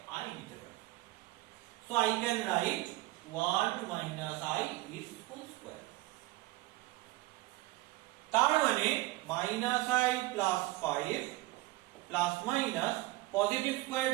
i নিতে পারি। So I can write 1 - i is whole square। তার মানে -i plus 5 plus minus positive square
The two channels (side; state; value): left; quieter; 19.3 dB